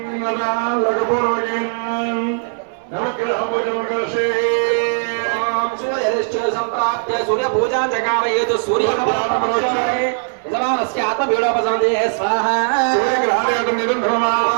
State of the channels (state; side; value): silent; left; digital silence